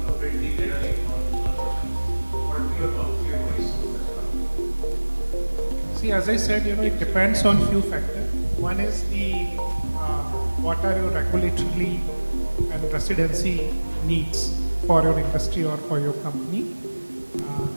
See, as I said, it depends on few factors. One is the what are your regulatory and residency needs for your industry or for your company.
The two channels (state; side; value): inverted; both; correlation -1.00